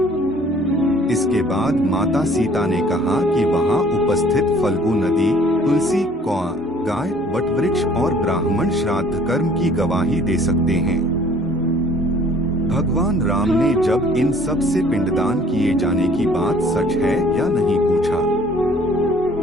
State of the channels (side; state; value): both; normal; correlation 0.55